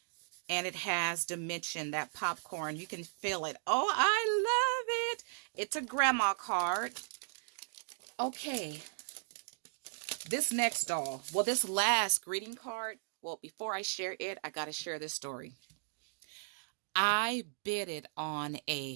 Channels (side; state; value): left; silent; digital silence